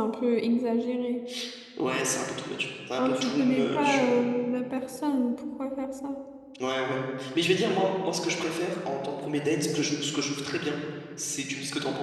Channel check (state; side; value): identical; both; correlation 1.00